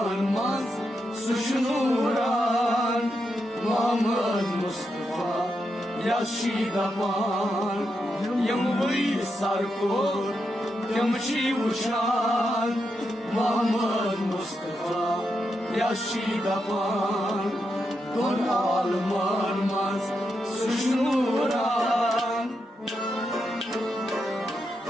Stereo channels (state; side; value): normal; both; correlation 0.84